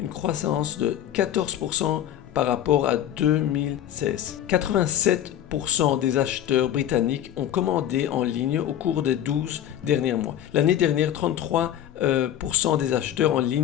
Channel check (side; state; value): right; quieter; 11.1 dB